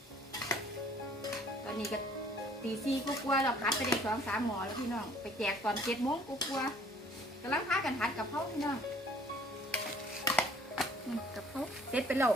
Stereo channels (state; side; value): normal; both; correlation 0.57